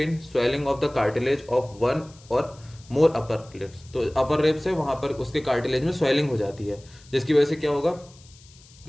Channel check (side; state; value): left; noise; hiss, 25 dB below the sound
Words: swelling of the cartilage of 1 और मोर अपर लिप्स। तो अपर लिप्स है वहां पर उसके कार्टिलेज में स्वेलिंग हो जाती है, जिसकी वजह से क्या होगा,